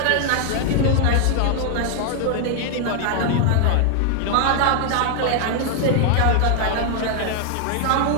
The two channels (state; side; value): different; both; correlation 0.00